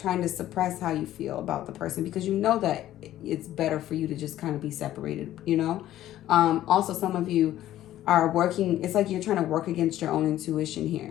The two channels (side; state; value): right; quieter; 13.3 dB